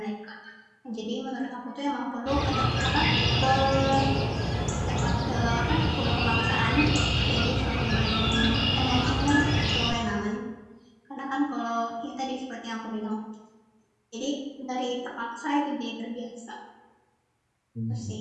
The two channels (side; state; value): both; identical; correlation 1.00